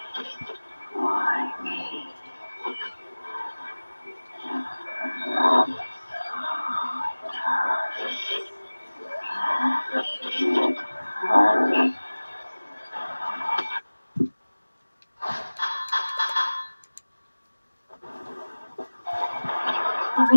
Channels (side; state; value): both; inverted; correlation -1.00